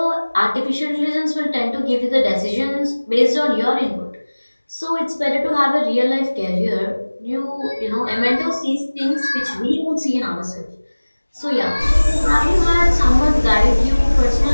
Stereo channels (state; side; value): inverted; both; correlation -1.00